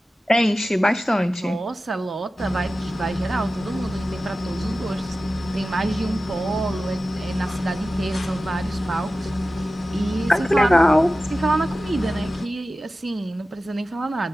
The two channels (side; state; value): both; normal; correlation 0.95